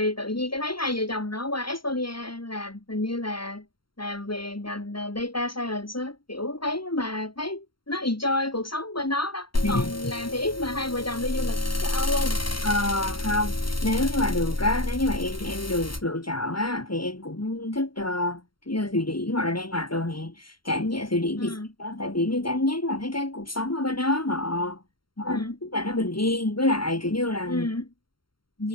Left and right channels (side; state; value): right; late; 0.73 ms